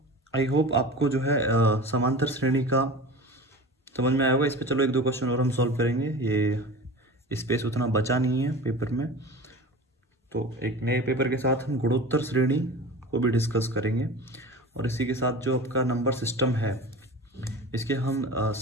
आई होप आपको जो है समांतर श्रेणी का समझ में आया होगा। इस पे चलो 1-2 क्वेश्चन और हम सॉल्व करेंगे, ये स्पेस उतना बचा नहीं है पेपर में। तो एक नए पेपर के साथ हम गुणोत्तर श्रेणी को भी डिस्कस करेंगे, और इसी के साथ जो आपका नंबर सिस्टम है इसके हम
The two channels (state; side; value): normal; both; correlation 0.35